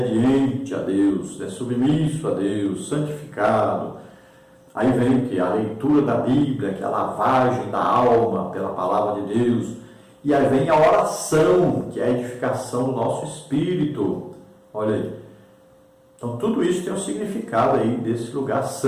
a Deus, submisso a Deus, santificado. Aí vem o que? A leitura da Bíblia, que é a lavagem da alma pela palavra de Deus. E aí vem a oração, que é a edificação do nosso espírito. Olha aí. Então tudo isso tem um significado aí desse lugar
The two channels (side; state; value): both; identical; correlation 1.00